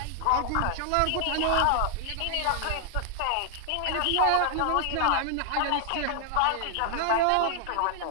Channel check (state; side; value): different; both; correlation 0.00